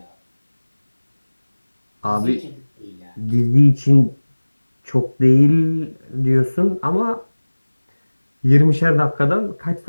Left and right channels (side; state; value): both; inverted; correlation -1.00